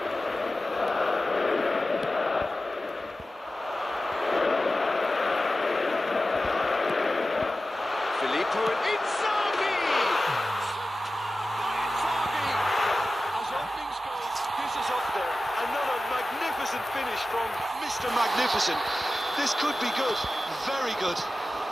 Filippo and Inzaghi! By Inzaghi! As openings go, this is up there. Another magnificent finish from Mr. Magnificent. This could be good, very good.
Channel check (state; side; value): normal; both; correlation 0.94